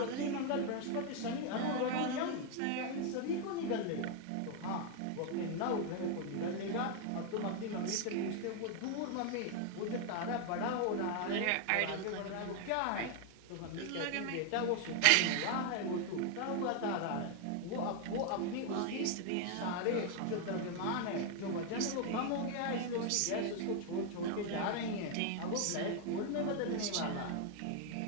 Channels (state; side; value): different; both; correlation 0.00